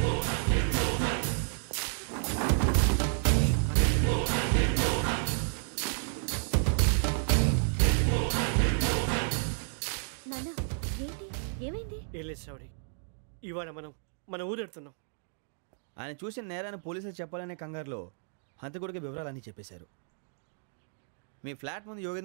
ఏం లేదు శ్రావణి, ఇవాళ మనం మన ఊరెడుతున్నాం. ఆయన చూసిన నేరాన్ని పోలీసులు చెప్పాలనే కంగారులో హంతకుడికి వివరాలన్నీ చెప్పేశారు. మీ ఫ్లాట్ ముందు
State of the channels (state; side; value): silent; left; digital silence